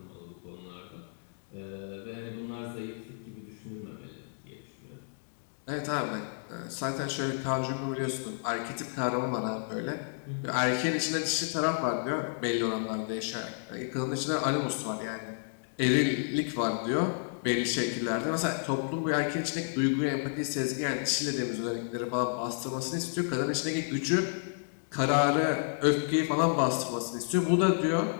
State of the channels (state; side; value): silent; right; digital silence